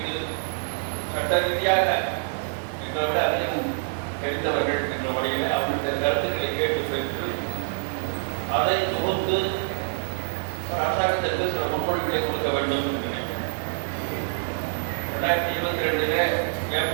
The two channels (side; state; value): left; silent; digital silence